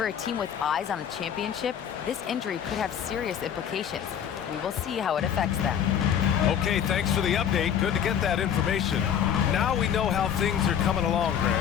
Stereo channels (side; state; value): right; quieter; 8.8 dB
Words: a team with eyes on a championship, this injury could have serious implications. We will see how it affects them. Okay, thanks for the update. Good to get that information. Now we know how things are coming along,